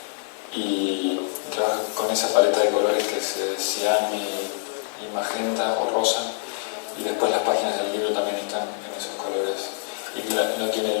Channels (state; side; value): silent; right; digital silence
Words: y trabaja con esa paleta de colores que es cian y magenta o rosa, y después las páginas del libro también están en esos colores. Y no tiene